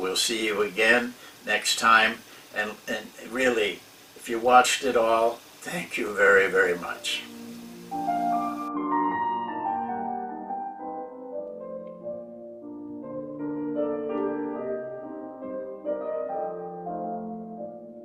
see you again next time. And really, if you watched it all, thank you very, very much.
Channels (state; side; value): identical; both; correlation 1.00